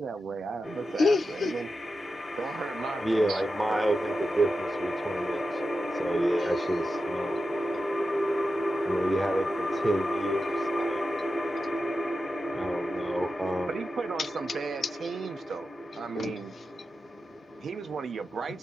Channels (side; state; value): both; normal; correlation 0.91